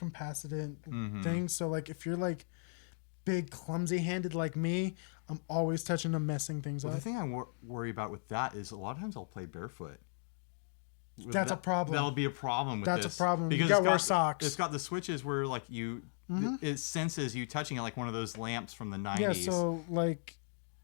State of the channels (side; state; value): right; silent; 54 dB below the other